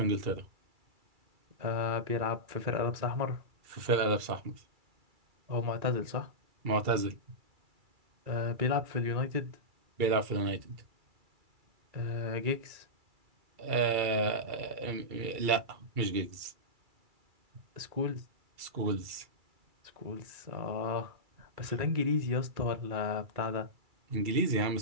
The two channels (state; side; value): late; left; 2.3 ms